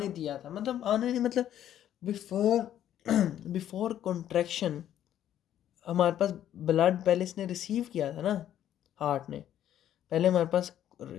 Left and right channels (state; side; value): quieter; right; 11.1 dB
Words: दिया था, मतलब आने नहीं मतलब बिफोर बिफोर कॉन्ट्रैक्शन हमारे पास ब्लड पहले इसने रिसीव किया था ना, हार्ट ने पहले हमारे पास